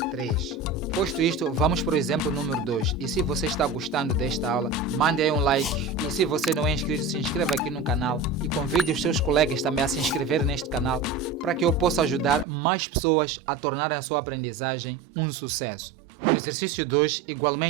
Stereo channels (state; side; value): drops out; left; at 12.5 s